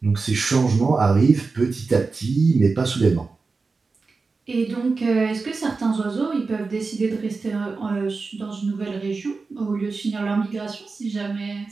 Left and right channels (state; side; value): quieter; left; 4.2 dB